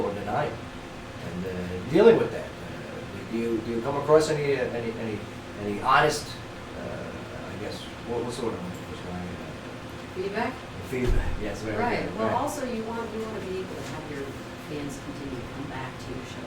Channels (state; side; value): identical; both; correlation 1.00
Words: or denial. And dealing with that, do you come across any honest, I guess, what's the word I'm looking for? Feedback? Feedback. Yes, very Right. good. Well, Right. also you want to be able to have your fans continue to come back to your